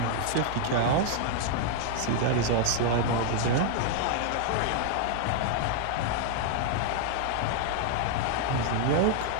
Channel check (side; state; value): both; different; correlation 0.00